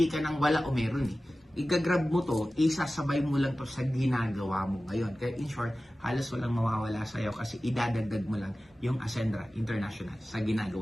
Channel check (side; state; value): both; normal; correlation 0.96